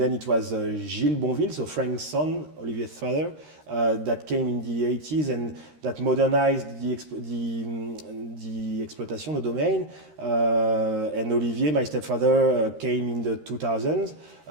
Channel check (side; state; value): left; late; 13 ms